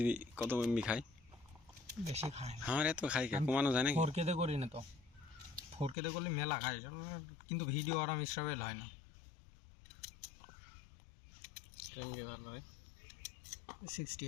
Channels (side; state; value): right; drops out; at 6.0 s